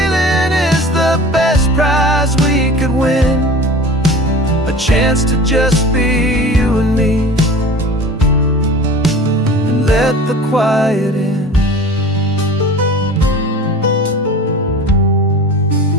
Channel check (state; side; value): normal; both; correlation 0.39